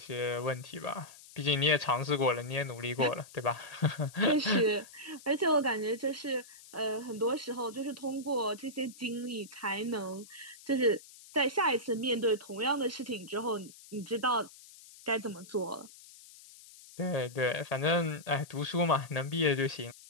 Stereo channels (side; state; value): left; noise; hiss, 20 dB below the sound